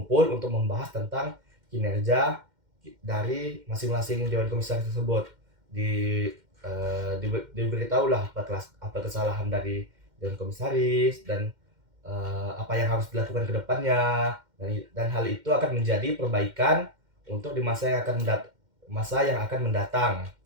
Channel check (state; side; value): late; left; 2.1 ms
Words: untuk membahas tentang kinerja dari masing-masing Dewan Komisaris tersebut. Diberitahulah apa kesalahan dari Dewan Komisaris dan apa yang harus dilakukan ke depannya, dan hal itu akan menjadi perbaikan untuk di masa yang akan mendatang